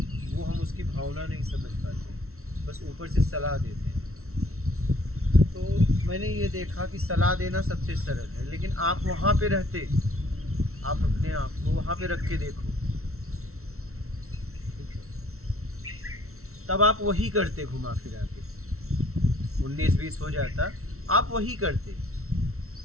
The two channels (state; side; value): late; left; 0.63 ms